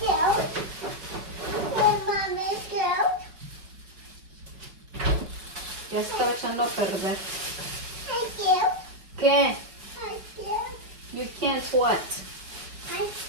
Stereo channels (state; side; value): late; left; 5.4 ms